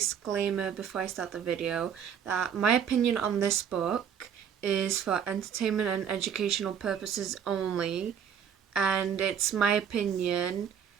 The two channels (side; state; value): left; quieter; 8.0 dB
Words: before I start the video that my opinion on this book is for entertainment and educational purposes only, and it's my opinion.